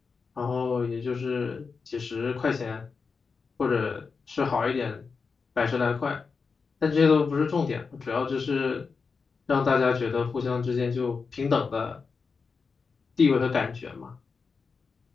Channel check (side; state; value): right; quieter; 5.0 dB